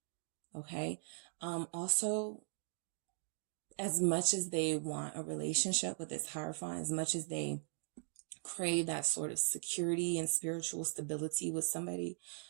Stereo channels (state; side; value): silent; left; digital silence